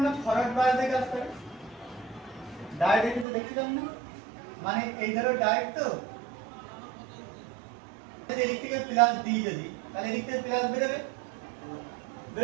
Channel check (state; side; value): drops out; left; at 3.2 s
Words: না ফরওয়ার্ড বায়াস দিয়ে কাজ করে, ডায়োডের ক্ষেত্রে দেখছিলাম না, মানে এই ধরো ডায়োড তো এদিক থেকে প্লাস দিই যদি, তাহলে এদিক থেকে প্লাস বেরোবে,